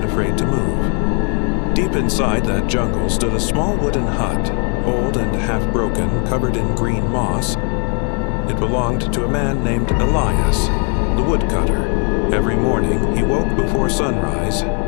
afraid to move. Deep inside that jungle stood a small wooden hut, old and half-broken, covered in green moss. It belonged to a man named Elias, the woodcutter. Every morning he woke before sunrise,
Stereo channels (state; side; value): quieter; right; 39.6 dB